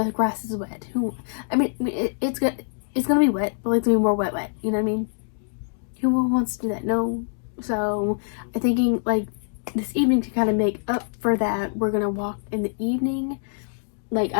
grass is wet. It's gonna be wet, but it's gonna be more wet. You know what I mean? Who wants to do that? No. So I'm thinking like this evening to kind of make up for that, we're gonna walk in the evening. Like,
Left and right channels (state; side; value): silent; right; digital silence